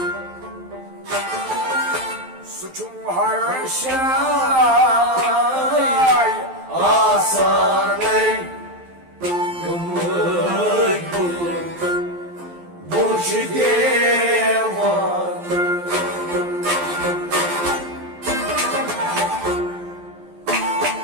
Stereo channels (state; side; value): late; left; 12 ms